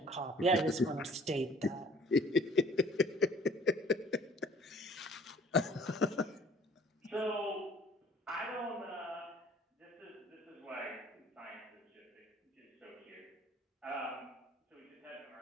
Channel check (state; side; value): normal; both; correlation 0.54